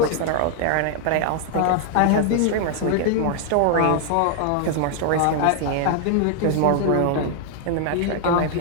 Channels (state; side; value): different; both; correlation 0.00